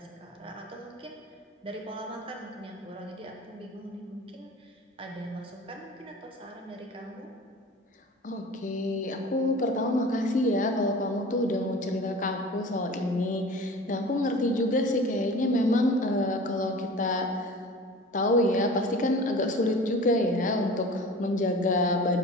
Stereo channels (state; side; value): normal; both; correlation 0.39